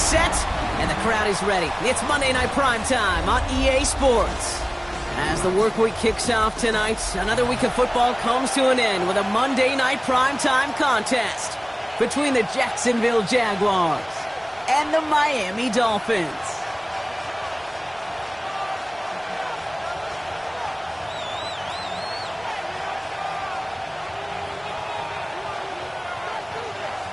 and the crowd is ready. It's Monday Night Primetime on EA Sports. As the work week kicks off tonight, another week of football comes to an end with a Monday Night Primetime contest between the Jacksonville Jaguars and the Miami Dolphins.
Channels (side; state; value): both; identical; correlation 1.00